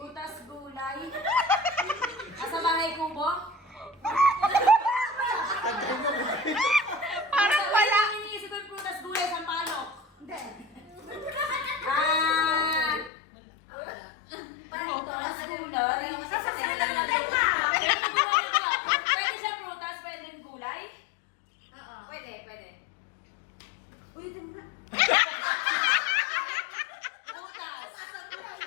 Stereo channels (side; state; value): right; drops out; at 13.1 s